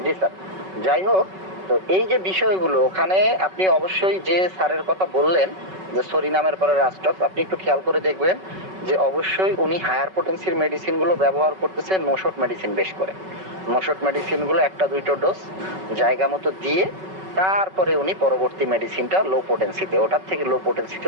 জি স্যার, যাই হোক, তো এই যে বিষয়গুলো ওখানে আপনি অবশ্যই যে স্যারের কথা বললেন যে সরিনামের পরে রাস্টক, আপনি একটু খেয়াল করে দেখবেন যে অবশ্যই উনি হায়ার পোটেন্সির মেডিসিন গুলো ব্যবহার করতেছে, নোশট মেডিসিন বেশ করে, নোশট মেডিসিন গুলো 1-2টো ডোজ জায়গা মতো দিয়ে তারপরে উনি পরবর্তী মেডিসিনটা লো পোটেন্সিতে, ওটার থেকে লো পোটেন্সিতে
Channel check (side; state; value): left; late; 5.3 ms